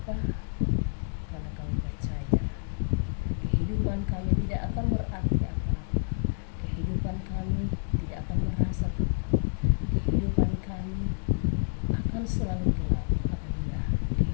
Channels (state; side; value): silent; right; digital silence